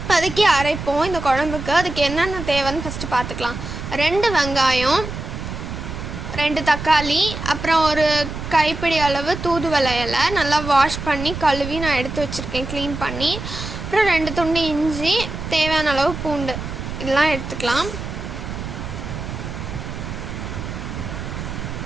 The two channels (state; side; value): noise; right; rumble, 7 dB below the sound